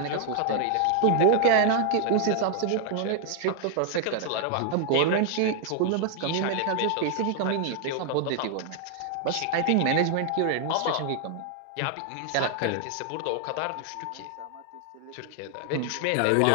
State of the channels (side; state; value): both; different; correlation 0.00